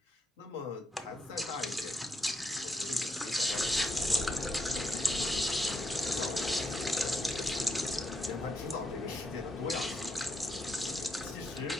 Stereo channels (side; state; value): both; normal; correlation 0.79